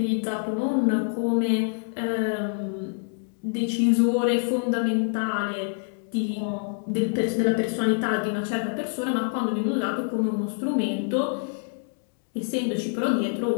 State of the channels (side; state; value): right; silent; digital silence